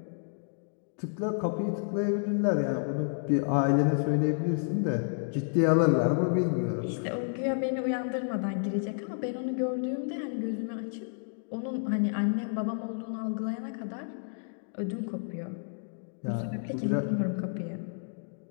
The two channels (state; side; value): silent; right; digital silence